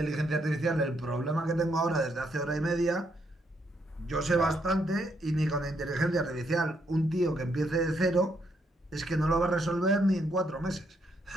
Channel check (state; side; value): normal; both; correlation 0.75